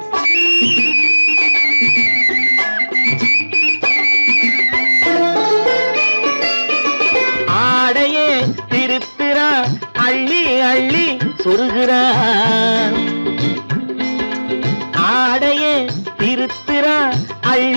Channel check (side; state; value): both; inverted; correlation -1.00